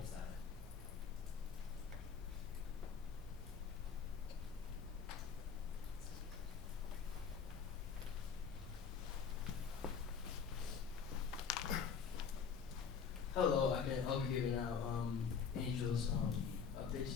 7th. Hello, I'll be giving out Angel's update. She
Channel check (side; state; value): right; quieter; 6.5 dB